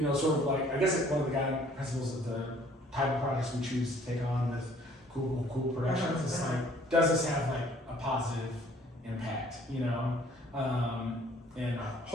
sort of like, I guess like one of the guiding principles of the type of projects we choose to take on with Cool Productions is like, does this have like a positive impact, and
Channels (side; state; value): both; normal; correlation 0.57